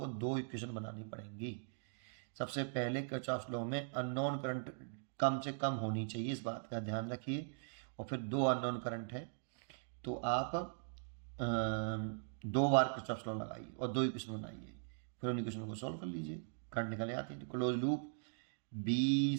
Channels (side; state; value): left; silent; digital silence